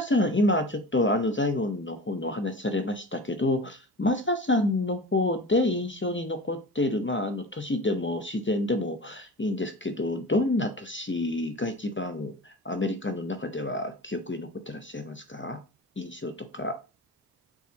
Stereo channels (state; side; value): normal; both; correlation 0.35